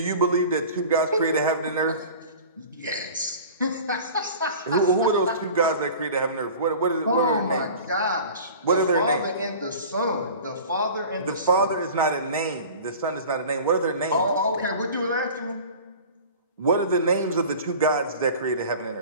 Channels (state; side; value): inverted; both; correlation -0.40